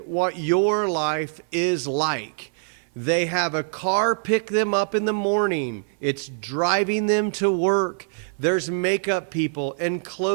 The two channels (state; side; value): silent; left; 60 dB below the other